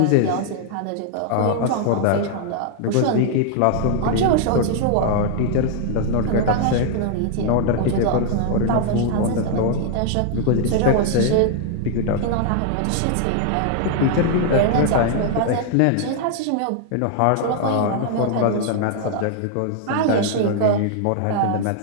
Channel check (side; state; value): both; different; correlation 0.00